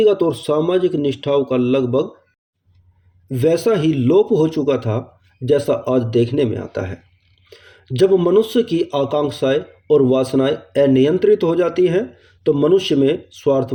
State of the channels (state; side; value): identical; both; correlation 1.00